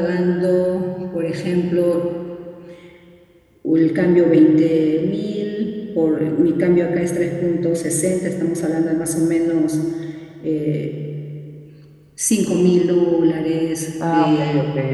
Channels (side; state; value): both; identical; correlation 1.00